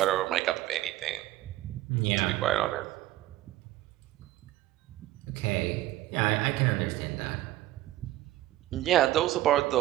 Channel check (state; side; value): quieter; left; 15.4 dB